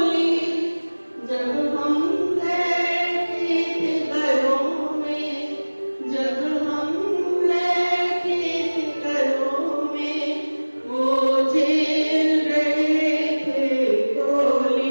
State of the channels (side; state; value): both; inverted; correlation -1.00